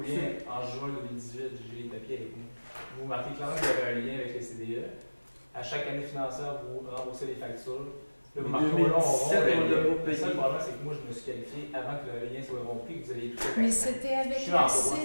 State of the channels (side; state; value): both; inverted; correlation -1.00